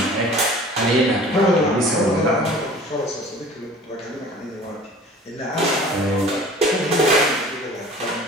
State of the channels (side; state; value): both; normal; correlation 0.45